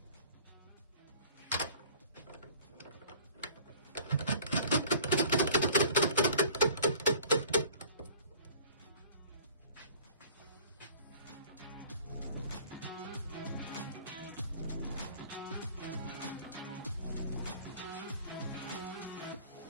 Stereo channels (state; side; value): inverted; both; correlation -0.47